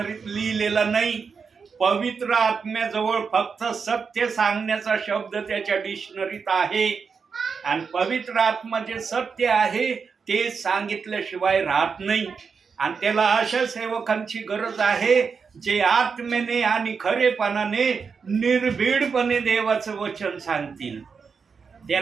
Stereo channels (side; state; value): left; quieter; 5.6 dB